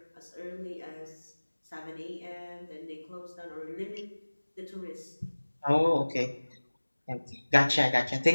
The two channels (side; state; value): both; inverted; correlation -1.00